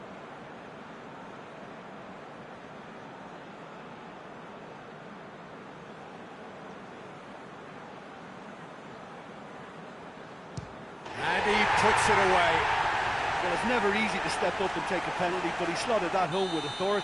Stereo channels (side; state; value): both; identical; correlation 1.00